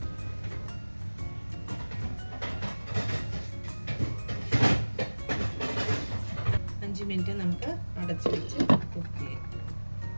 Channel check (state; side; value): inverted; both; correlation -1.00